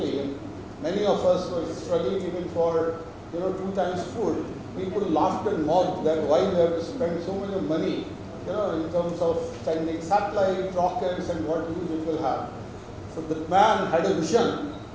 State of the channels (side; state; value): both; identical; correlation 1.00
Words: and many of us were struggling even for 2 times food, people laughed and mocked that why we have to spend so much money in terms of sending satellite, rockets, and what use it will have. So the man had a vision